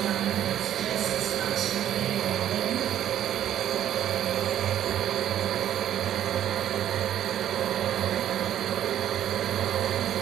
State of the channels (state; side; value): quieter; left; 11.1 dB